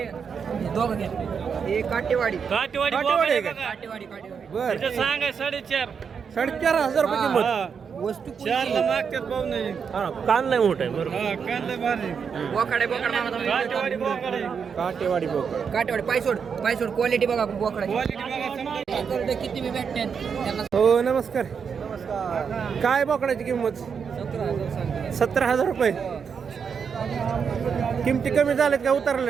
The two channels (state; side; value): quieter; left; 6.5 dB